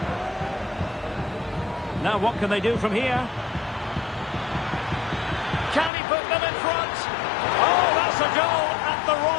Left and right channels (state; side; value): drops out; right; at 5.9 s